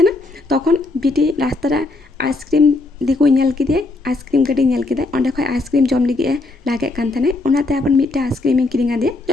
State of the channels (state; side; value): quieter; right; 3.2 dB